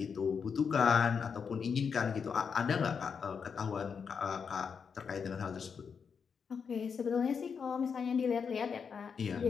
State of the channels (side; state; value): right; quieter; 6.3 dB